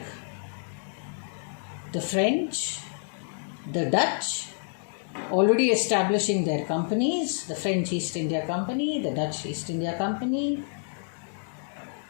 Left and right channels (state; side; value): silent; right; 59 dB below the other